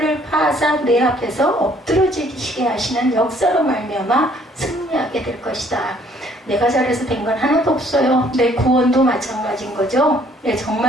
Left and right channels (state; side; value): normal; both; correlation 0.61